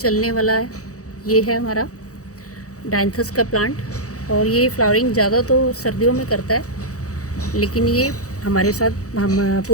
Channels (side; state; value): right; late; 0.66 ms